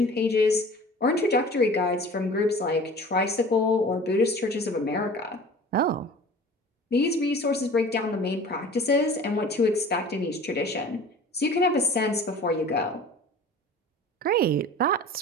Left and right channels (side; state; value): both; normal; correlation 0.43